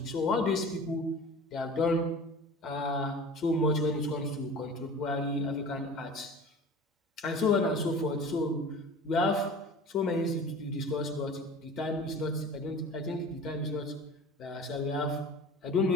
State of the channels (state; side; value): normal; both; correlation 0.39